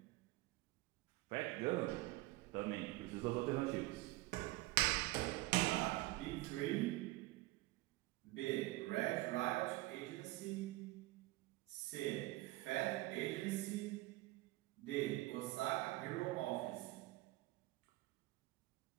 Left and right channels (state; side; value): quieter; left; 19.4 dB